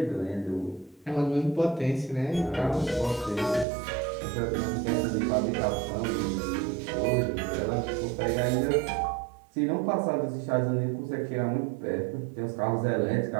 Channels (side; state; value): left; drops out; at 3.7 s